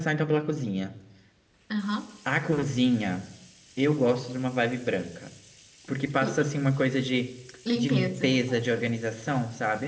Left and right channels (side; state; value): both; identical; correlation 1.00